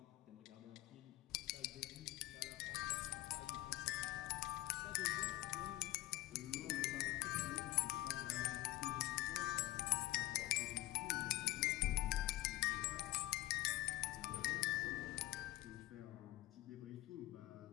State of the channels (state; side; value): quieter; right; 17.1 dB